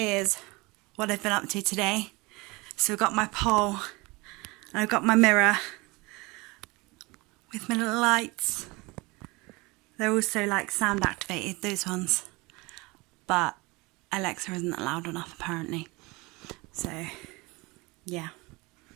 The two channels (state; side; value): quieter; left; 24.6 dB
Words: what I've been up to today. So I've got my pole and I've got my mirror with my little lights They're also like sound activated, those ones. But Alexa isn't loud enough apparently. So yeah.